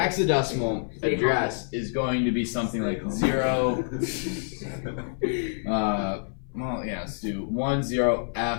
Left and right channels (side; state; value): right; silent; 58 dB below the other